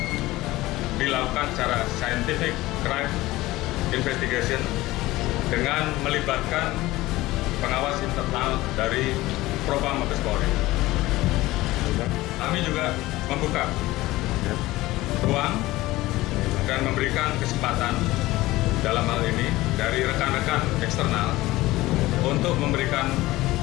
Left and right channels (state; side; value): quieter; right; 18.3 dB